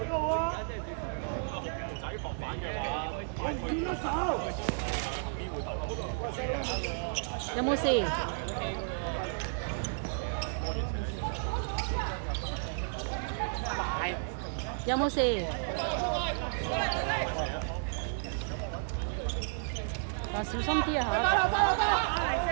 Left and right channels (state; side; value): silent; left; digital silence